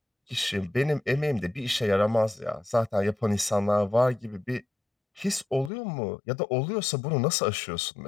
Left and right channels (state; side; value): drops out; right; at 5.7 s